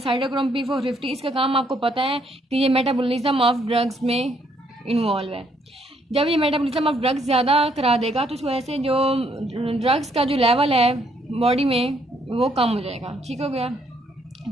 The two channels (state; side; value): normal; both; correlation 0.70